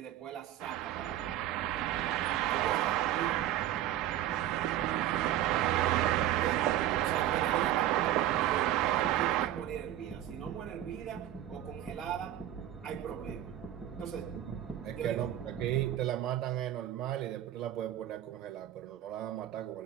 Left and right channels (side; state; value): left; quieter; 12.6 dB